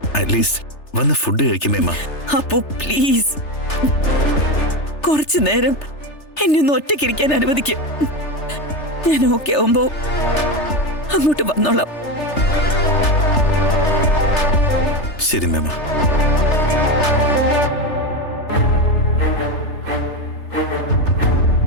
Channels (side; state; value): right; late; 3.3 ms